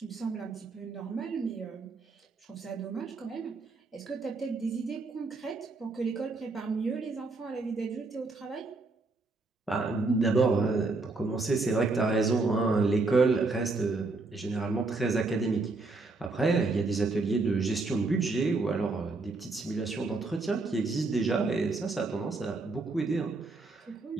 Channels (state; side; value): quieter; left; 3.5 dB